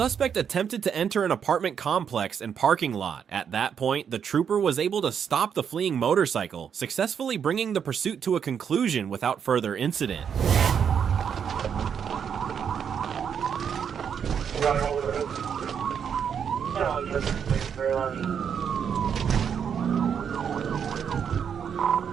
attempted to enter an apartment complex and parking lot. At that point, the trooper was able to stop the fleeing motorcycle, successfully bringing the pursuit to a conclusion without further incident.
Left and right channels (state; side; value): quieter; left; 7.6 dB